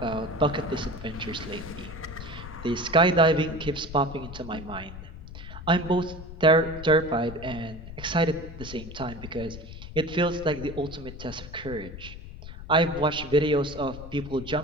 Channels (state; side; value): noise; left; rumble, 12 dB below the sound